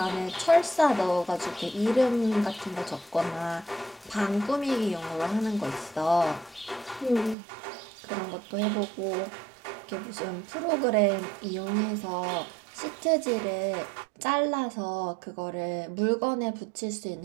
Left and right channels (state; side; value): drops out; left; at 7.4 s